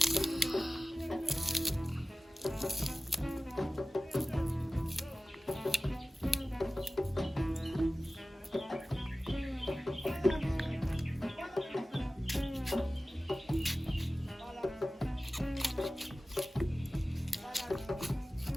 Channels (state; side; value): normal; both; correlation 0.96